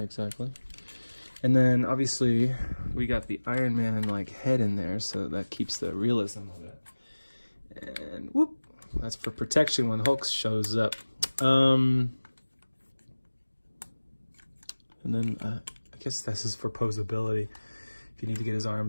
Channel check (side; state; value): both; inverted; correlation -1.00